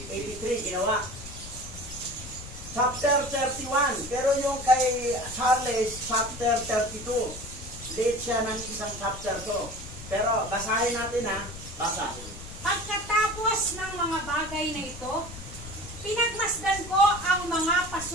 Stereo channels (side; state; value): left; noise; rumble, 13 dB below the sound